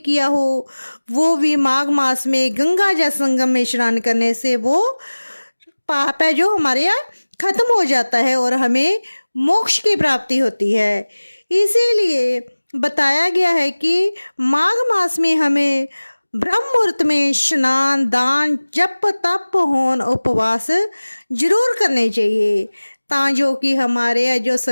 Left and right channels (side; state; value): both; inverted; correlation -1.00